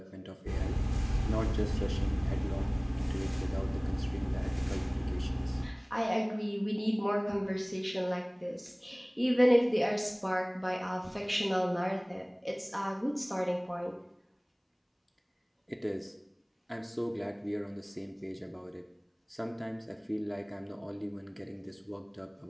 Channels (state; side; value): identical; both; correlation 1.00